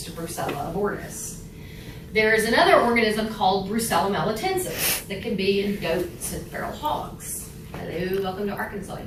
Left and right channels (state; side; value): identical; both; correlation 1.00